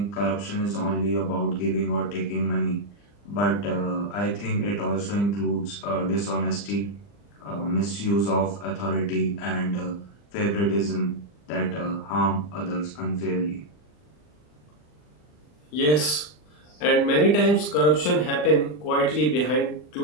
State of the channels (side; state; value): right; late; 40 ms